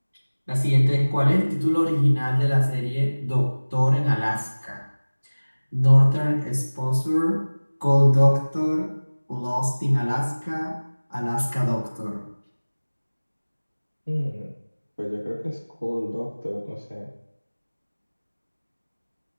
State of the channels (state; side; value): inverted; both; correlation -1.00